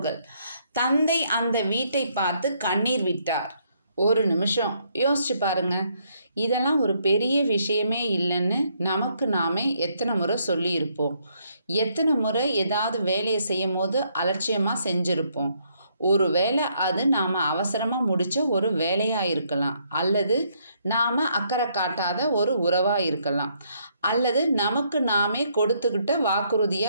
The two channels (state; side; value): inverted; both; correlation -0.71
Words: தந்தை அந்த வீட்டை பார்த்து கண்ணீர் விட்டார். ஒரு நிமிஷம் யோசிச்சு பாருங்க. இதெல்லாம் ஒரு பெரிய விஷயமே இல்லைன்னு நமக்கு நாமே எத்தனை முறை சொல்லியிருப்போம். எத்தனை முறை ஏதாவது வேலையை செய்யும் போது அலட்சியமாக செஞ்சுருப்போம். ஒரு வேளை அது நாம் அவசரமாக முடித்த ஒரு வேலையாக இருக்கலாம், அல்லது நாம் அக்கறை காட்டாத ஒரு உறவாக இருக்கலாம், அல்லது நமக்கு நாமே கொடுத்துக்கிட்ட